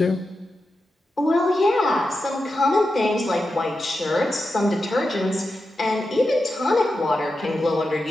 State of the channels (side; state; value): both; normal; correlation 0.90